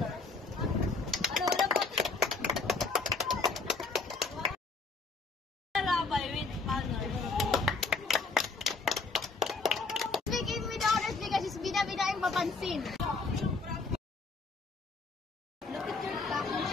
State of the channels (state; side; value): quieter; right; 4.0 dB